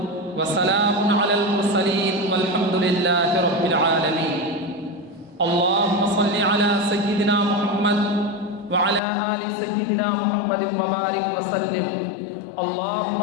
وسلام على المرسلين والحمد لله رب العالمين. اللهم صل على سيدنا محمد وعلى آل سيدنا محمد وبارك وسلم. اللهم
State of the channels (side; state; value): right; drops out; at 9.0 s